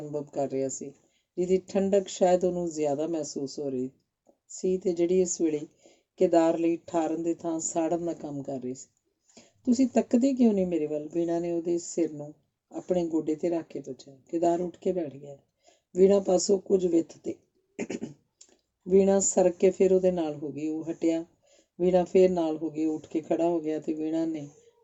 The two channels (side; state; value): both; identical; correlation 1.00